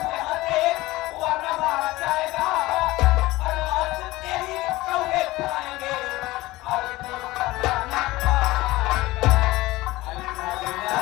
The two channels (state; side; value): quieter; right; 19.1 dB